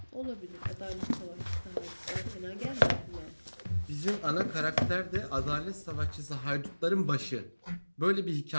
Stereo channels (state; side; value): inverted; both; correlation -1.00